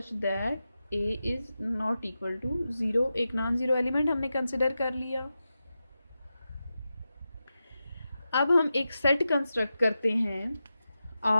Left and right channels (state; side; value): inverted; both; correlation -0.91